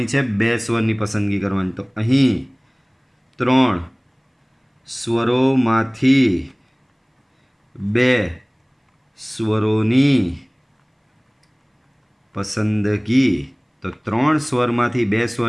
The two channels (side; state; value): both; identical; correlation 1.00